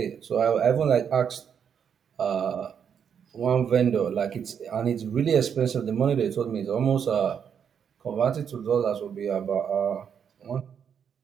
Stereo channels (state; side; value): quieter; left; 7.7 dB